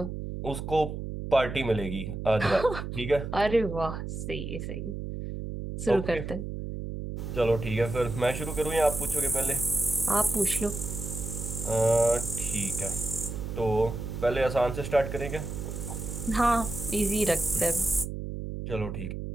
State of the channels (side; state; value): right; noise; hum, 6 dB below the sound